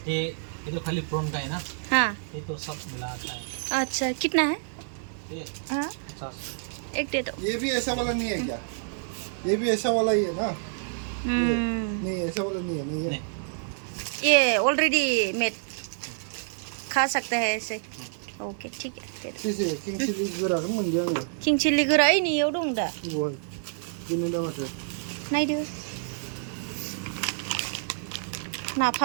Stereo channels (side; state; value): left; silent; digital silence